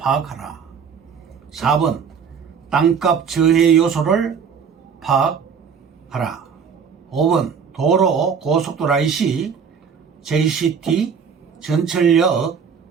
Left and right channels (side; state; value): left; quieter; 6.6 dB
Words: 4번, 땅값 저해 요소를 파악하라. 5번, 도로, 고속도로 IC, JCT, 전철역,